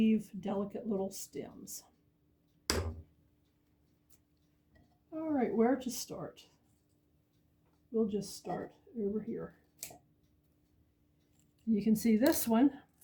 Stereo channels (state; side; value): identical; both; correlation 1.00